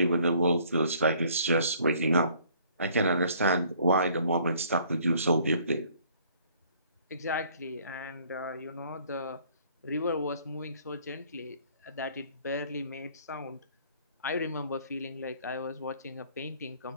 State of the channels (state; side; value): inverted; both; correlation -0.59